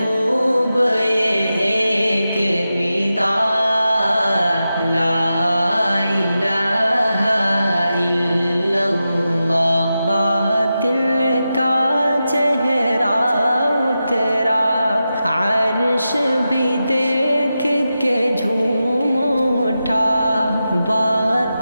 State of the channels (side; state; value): both; inverted; correlation -0.91